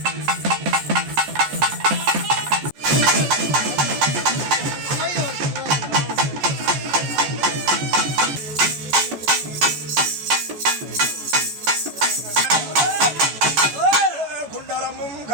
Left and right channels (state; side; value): late; left; 14 ms